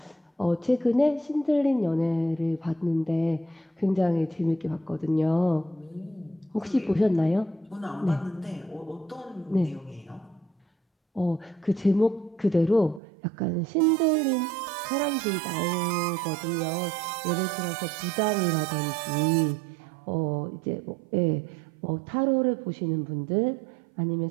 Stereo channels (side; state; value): left; drops out; at 13.0 s